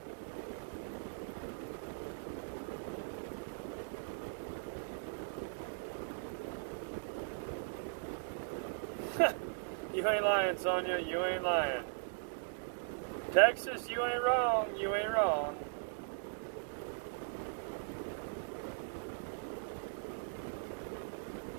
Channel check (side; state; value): left; silent; digital silence